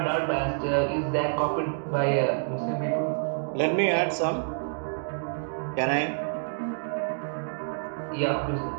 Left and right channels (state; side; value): silent; left; digital silence